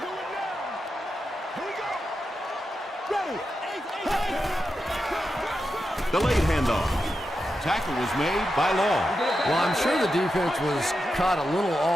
Delayed handoff. Tackle was made by Long. Well, I'm sure the defense was caught a little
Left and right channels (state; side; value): normal; both; correlation 0.88